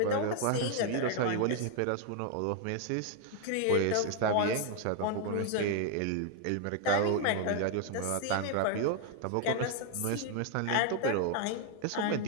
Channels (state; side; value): different; both; correlation 0.00